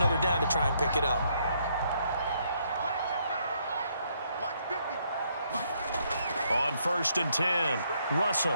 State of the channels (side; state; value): both; inverted; correlation -0.72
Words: down to try and pick it up. On 1st and 10,